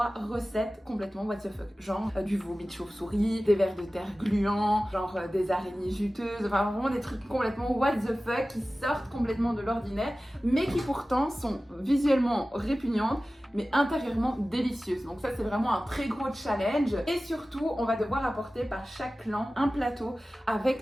recettes complètement what the fuck. Genre du vomi de chauve-souris, des vers de terre gluants, genre des araignées juteuses, enfin vraiment des trucs complètement what the fuck qui sortent complètement de l'ordinaire, mais qui pourtant sont visuellement répugnantes, mais intérieurement délicieuses. Donc ça, c'est vraiment un très gros challenge. Et surtout, on va devoir apporter par chaque clan un plateau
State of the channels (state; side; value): normal; both; correlation 0.96